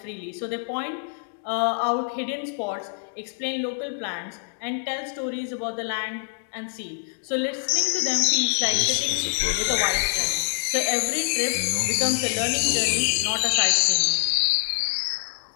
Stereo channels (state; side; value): silent; right; digital silence